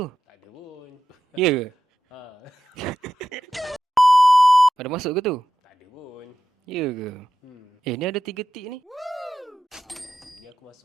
Tak ada pun. Ya ke? Ha, Ada masuk ke tu? tak ada pun. Ya ke? Ni ada 3 tik ni. Ni aku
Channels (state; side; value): normal; both; correlation 0.90